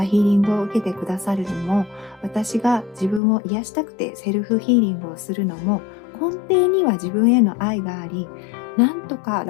ヒーリングを受けてくださるのも、私が自分を癒したくてセルフヒーリングをするのも、根底には自分への愛があり、なんとか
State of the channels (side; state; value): right; drops out; at 3.2 s